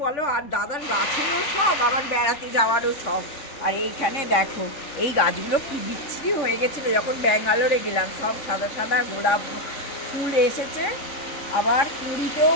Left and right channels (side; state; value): right; late; 3.5 ms